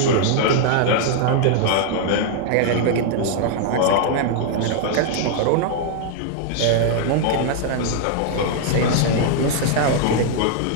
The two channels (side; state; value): both; different; correlation 0.00